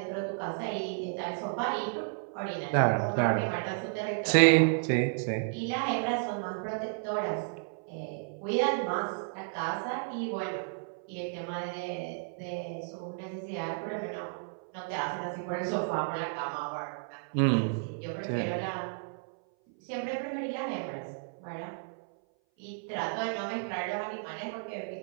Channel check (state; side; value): silent; left; 56 dB below the other